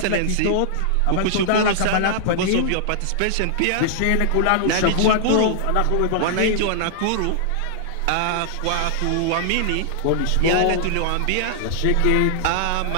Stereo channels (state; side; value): different; both; correlation -0.01